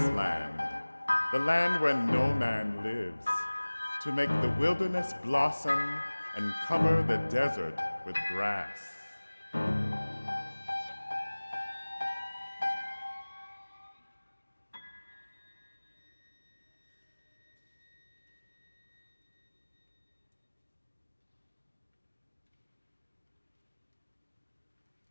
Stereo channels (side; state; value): both; inverted; correlation -1.00